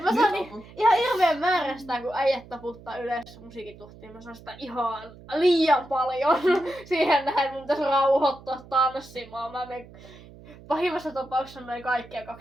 mä saan ihan hirveän määrä sitä, kun äijät taputtaa yleensä musiikituhtiin. Mä saan sitä ihan liian paljon siihen nähden. Mun pitäisi rauhoittua tanssimaan. Mä menen pahimmassa tapauksessa noin kaikkia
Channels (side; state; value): right; noise; hum, 20 dB below the sound